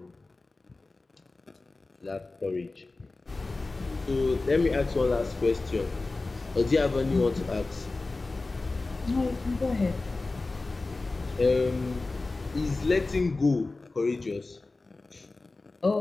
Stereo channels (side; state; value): right; quieter; 3.4 dB